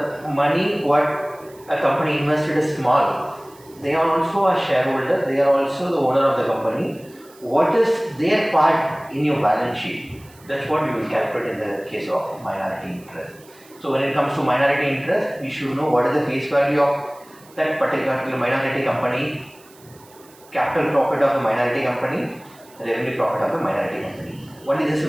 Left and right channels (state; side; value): noise; right; hiss, 26 dB below the sound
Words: money what a company invested is small, they are also a shareholder, they are also the owner of the company. What is their part in your balance sheet? That's what we will calculate in the case of minority interest. So when it comes to minority interest, we should know what is the face value of that particular minority company, capital profit of the minority company, revenue profit of the minority company. Only this